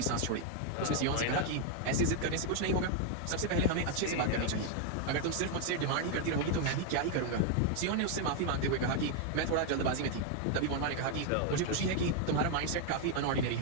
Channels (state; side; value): different; both; correlation 0.01